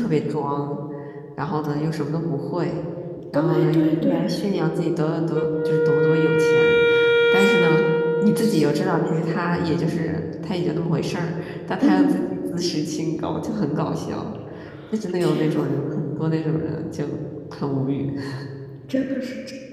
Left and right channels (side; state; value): both; identical; correlation 1.00